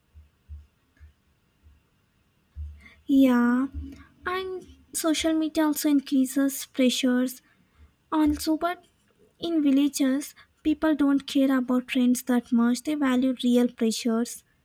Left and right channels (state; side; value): identical; both; correlation 1.00